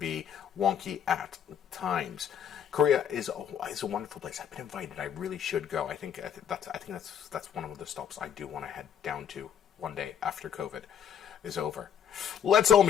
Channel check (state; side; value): quieter; right; 8.7 dB